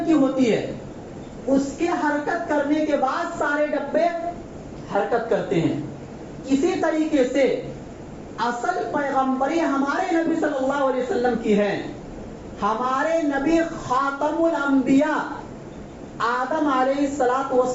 کی ہوتی ہے. اس کے حرکت کرنے کے بعد سارے ڈبے حرکت کرتے ہیں. اسی طریقے سے اصل پیغمبری ہمارے نبی صلی اللہ علیہ وسلم کی ہے. ہمارے نبی خاتم الانبیاء آدم علیہ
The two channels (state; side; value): identical; both; correlation 1.00